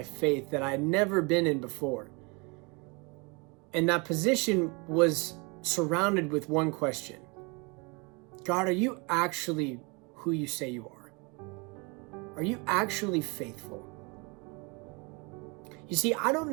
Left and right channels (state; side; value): quieter; left; 29.8 dB